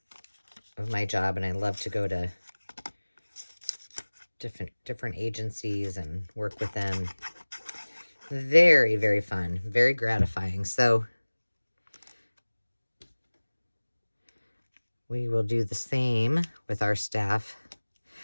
my job, and I love to go to different agencies and work with them. Very, very fun, very gratifying. So we will do the same with our staff.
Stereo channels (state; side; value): inverted; both; correlation -1.00